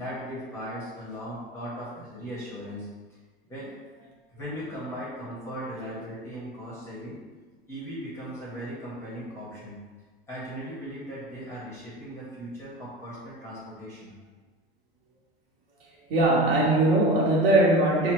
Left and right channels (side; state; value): both; normal; correlation 0.33